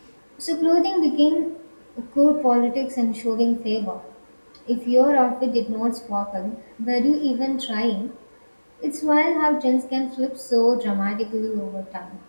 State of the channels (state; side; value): inverted; both; correlation -1.00